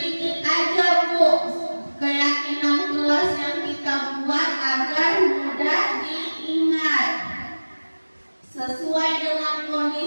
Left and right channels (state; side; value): inverted; both; correlation -1.00